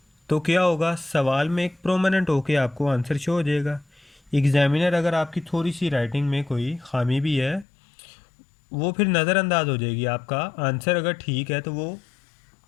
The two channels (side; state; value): right; drops out; at 7.7 s